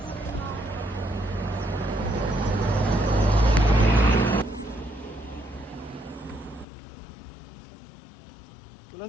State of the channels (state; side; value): drops out; right; at 6.7 s